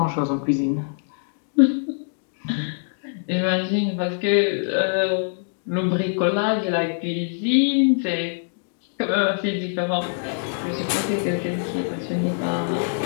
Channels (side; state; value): right; silent; digital silence